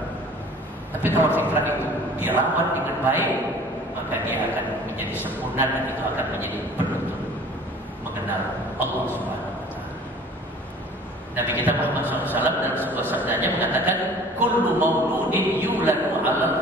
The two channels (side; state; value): both; normal; correlation 0.48